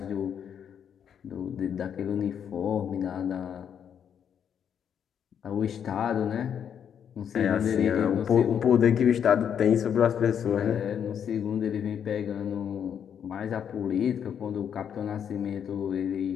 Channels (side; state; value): right; quieter; 8.3 dB